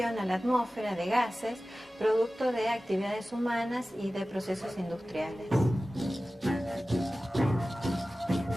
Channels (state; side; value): normal; both; correlation 0.96